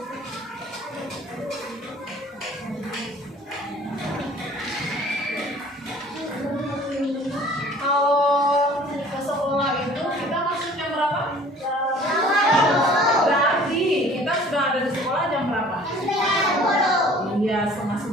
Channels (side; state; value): both; normal; correlation 0.50